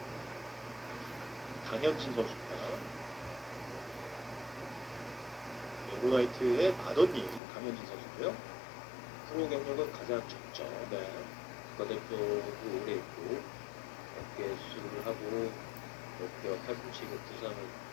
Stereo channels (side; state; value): right; drops out; at 7.4 s